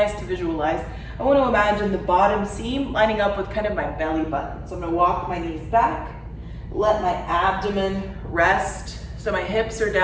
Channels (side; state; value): both; identical; correlation 1.00